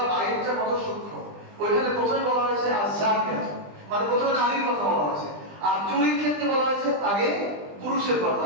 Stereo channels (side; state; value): left; late; 20 ms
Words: আইনটা কত সূক্ষ্ম। ওইখানে প্রথমে বলা হয়েছে আযানিয়াত, মানে প্রথমে নারীর কথা বলা হয়েছে, আর চুরির ক্ষেত্রে বলা হয়েছে আগে পুরুষের কথা।